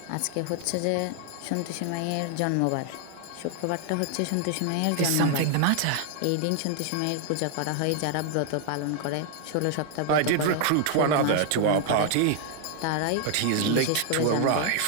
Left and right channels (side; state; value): both; different; correlation 0.00